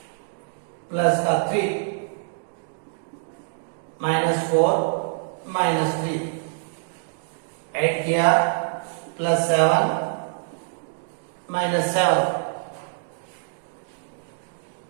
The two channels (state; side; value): silent; left; digital silence